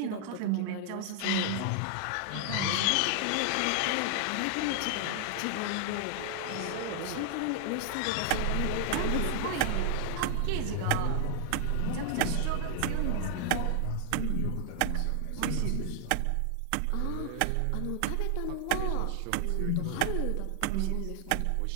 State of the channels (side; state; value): both; different; correlation 0.00